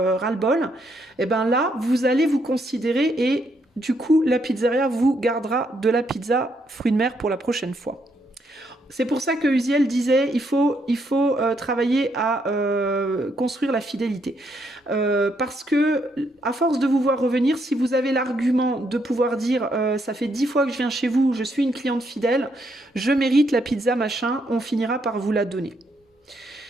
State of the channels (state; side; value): normal; both; correlation 0.75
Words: ras-le-bol, et ben là, vous allez vous considérer et du coup, la pizzeria vous gardera de la pizza fruits de mer pour la prochaine fois. C'est pour ça que Uziel disait il faut travailler à construire la fidélité. Parce que, à force de vous voir revenir, si vous avez l'argument de pouvoir dire ça fait 10 fois que je viens chez vous, je suis une cliente fidèle, je mérite la pizza machin, on finira par vous la donner.